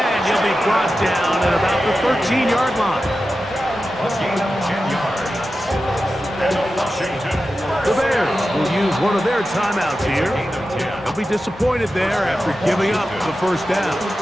he'll be brought down at about the 13-yard line. A gain of 10 yards. And Washington. The Bears will use one of their timeouts here. Gain of 10. They'll be disappointed there after giving up the first down.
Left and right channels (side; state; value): both; normal; correlation 0.92